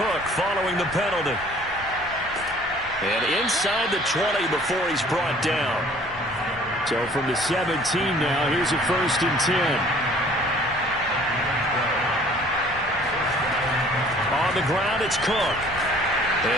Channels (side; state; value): both; normal; correlation 0.54